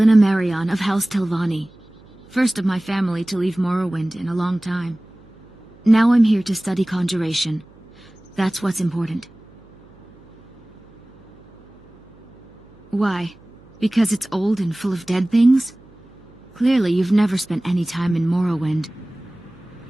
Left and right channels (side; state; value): right; noise; hum, 26 dB below the sound